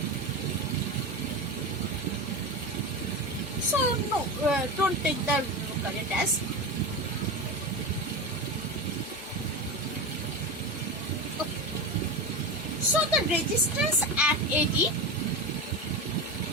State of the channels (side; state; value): both; normal; correlation 0.22